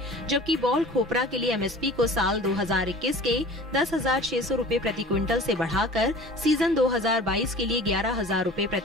जबकि बॉल खोपरा के लिए एमएसपी को साल 2021 के 10,600 रूपए प्रति क्विंटल से बढ़ाकर सीजन 2022 के लिए 11,000 रूपए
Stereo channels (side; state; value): both; normal; correlation 0.42